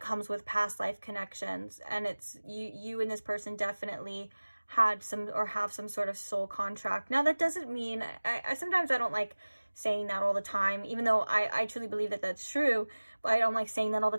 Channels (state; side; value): inverted; both; correlation -1.00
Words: comes with past life connections. And it's you and this person definitely had some, or have some sort of soul contract. Now that doesn't mean, I sometimes I don't like saying that all the time, even though I truly believe that that's true, but I don't like saying that all the